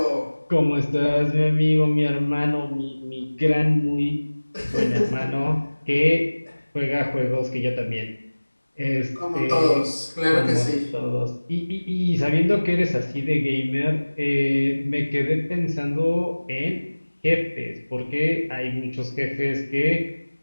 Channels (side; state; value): both; inverted; correlation -1.00